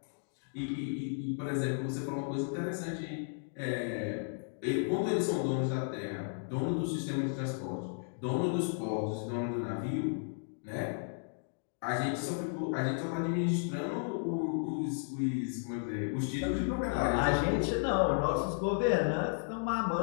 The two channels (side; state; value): right; silent; digital silence